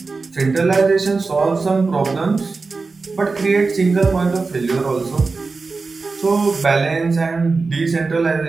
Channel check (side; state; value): left; quieter; 4.1 dB